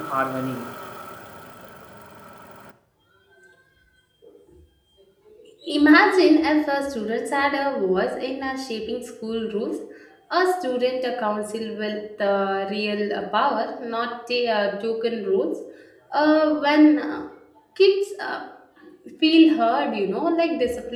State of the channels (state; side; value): identical; both; correlation 1.00